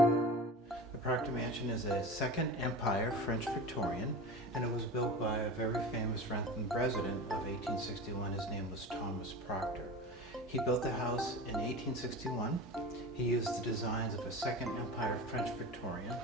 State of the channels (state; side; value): normal; both; correlation 0.31